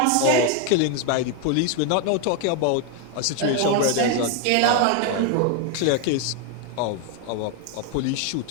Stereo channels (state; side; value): different; both; correlation 0.01